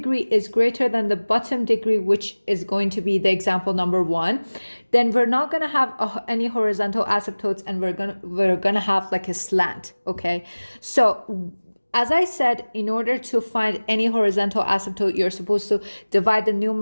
is greater than the bottom degree, which is going to be the example number 1, then we're not going to have any horizontal asymptotes, and we're gonna have like a slant, okay? So as I said, in order to find any horizontal asymptote, you're supposed to divide the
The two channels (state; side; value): inverted; both; correlation -1.00